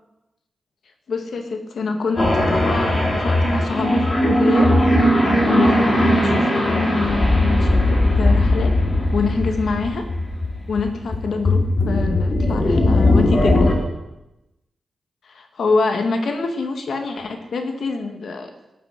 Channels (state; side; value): normal; both; correlation 0.90